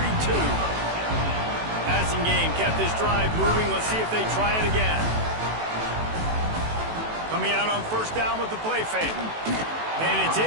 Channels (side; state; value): left; late; 18 ms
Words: Passing game kept this drive moving. Let's see if they try it again. Coming out on 1st down with the play fake. And it's